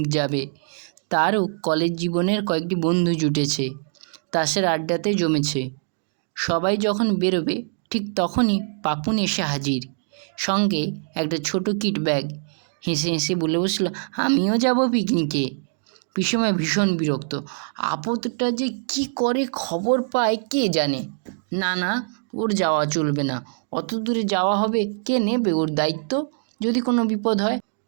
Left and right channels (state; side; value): silent; left; digital silence